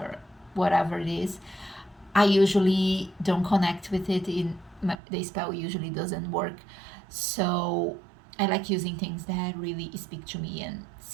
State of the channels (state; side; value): drops out; left; at 5.0 s